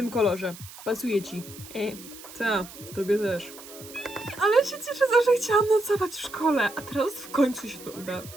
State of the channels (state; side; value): noise; right; hiss, 16 dB below the sound